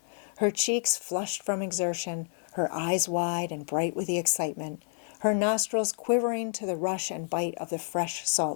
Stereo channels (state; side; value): silent; right; digital silence